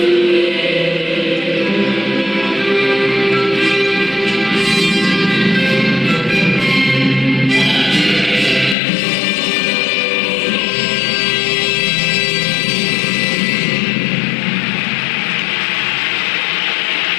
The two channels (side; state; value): right; drops out; at 8.8 s